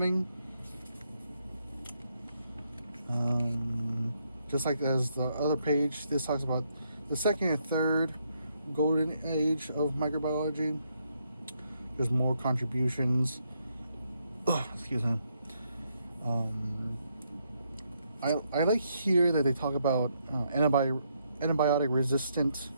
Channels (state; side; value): inverted; both; correlation -0.76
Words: Just like as the other page, this talks about the second and third golden age of microbiology. There's more contributions. Excuse me. I like here that they talk about antibiotic resistant